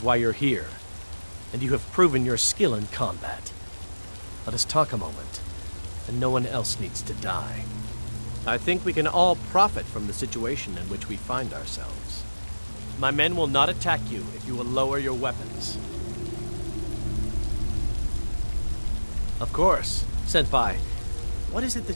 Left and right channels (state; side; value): inverted; both; correlation -1.00